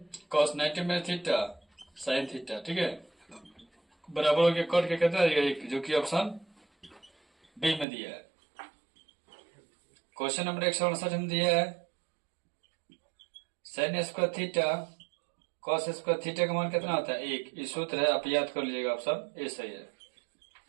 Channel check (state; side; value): drops out; left; at 7.9 s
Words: कॉस 90 में थीटा साइन थीटा। ठीक है, बराबर हो गया कट के कितना देगा 1, जो कि ऑप्शन बी में दिया है। क्वेश्चन नंबर 159 में दिया है sine square theta cos square theta का मान कितना होता है 1, ये सूत्र है, आप याद कर लीजिएगा, ऑप्शन ए सही है।